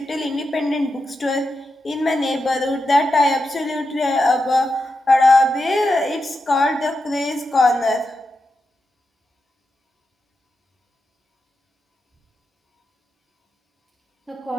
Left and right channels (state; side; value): normal; both; correlation 0.88